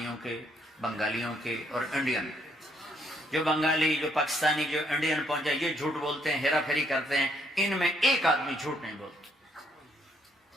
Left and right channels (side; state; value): both; normal; correlation 0.70